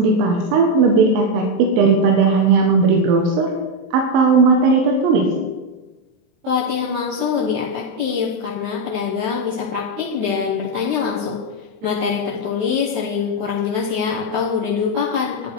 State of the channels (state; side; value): late; left; 23 ms